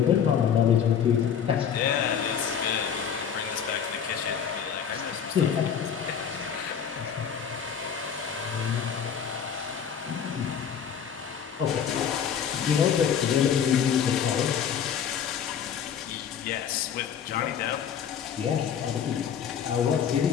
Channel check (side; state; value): right; quieter; 8.0 dB